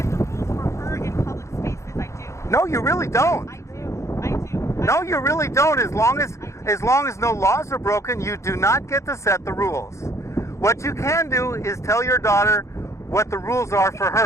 the rules for her in public spaces. I do. No, you really don't. I do. I do. No, you really don't. As long as no laws are broken, you do not get to set the rules. What you can do is tell your daughter what the rules are for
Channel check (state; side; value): late; right; 0.14 ms